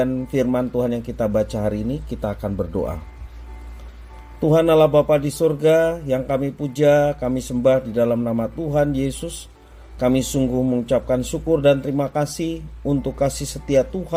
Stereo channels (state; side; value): identical; both; correlation 1.00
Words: firman Tuhan yang kita baca hari ini, kita akan berdoa. Tuhan Allah Bapa di surga, yang kami puja, kami sembah di dalam nama Tuhan Yesus. Kami sungguh mengucapkan syukur dan terima kasih untuk kasih setia